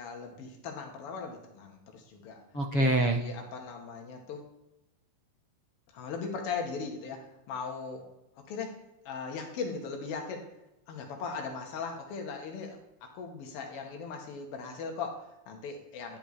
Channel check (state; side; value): late; right; 7.1 ms